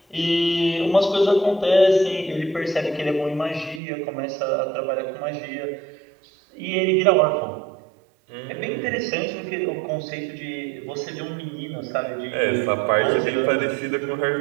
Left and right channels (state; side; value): drops out; left; at 3.8 s